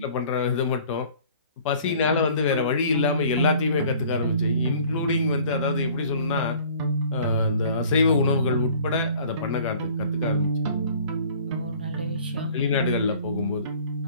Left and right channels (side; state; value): both; inverted; correlation -0.51